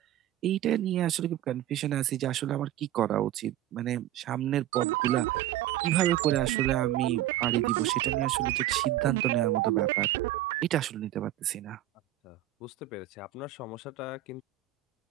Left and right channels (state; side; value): quieter; left; 13.0 dB